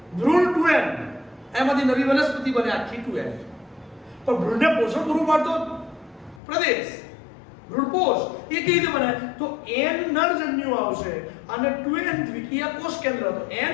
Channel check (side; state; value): right; drops out; at 6.4 s